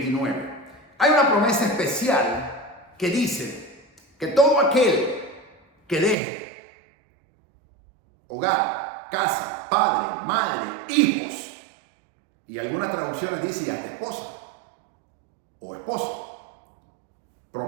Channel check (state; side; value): drops out; left; at 6.2 s